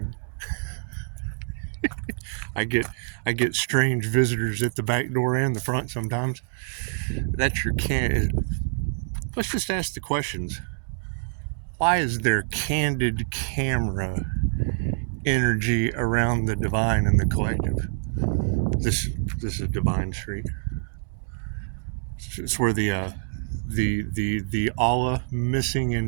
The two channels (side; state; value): left; silent; digital silence